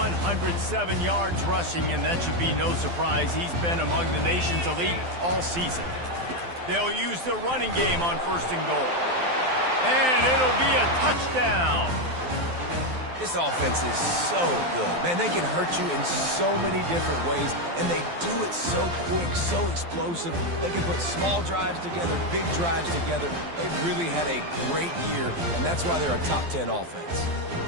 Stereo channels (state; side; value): late; left; 12 ms